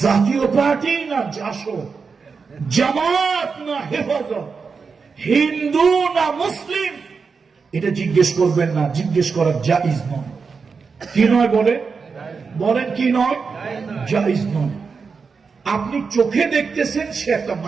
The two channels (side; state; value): left; quieter; 5.2 dB